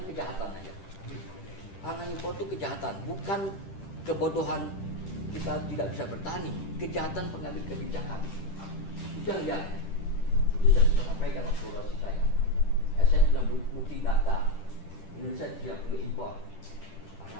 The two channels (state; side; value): late; right; 10 ms